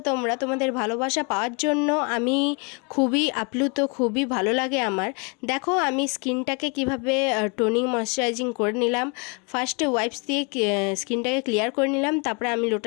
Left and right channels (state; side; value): quieter; right; 33.2 dB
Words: তোমরা। তোমাদের ভালোবাসা পাওয়ার জন্য আমি খুবই আপ্লুত, খুবই ভালো লাগে আমার। দেখো আমি স্কিনটাকে কিভাবে টোনিং ময়শ্চারাইজিং করে নিলাম। ফার্স্টে ওয়াইপস দিয়ে স্কিনটাকে ক্লিয়ার করে নিলাম, তারপরে আমি